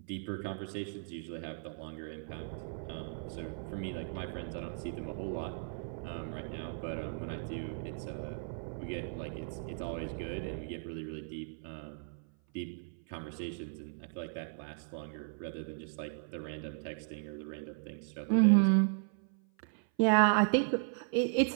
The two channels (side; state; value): left; silent; 54 dB below the other